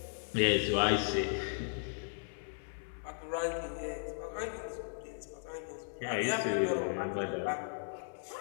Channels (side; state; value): right; silent; 54 dB below the other